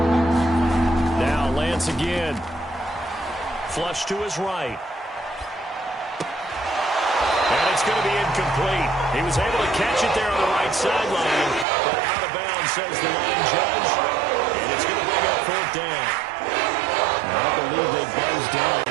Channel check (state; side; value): drops out; left; at 11.7 s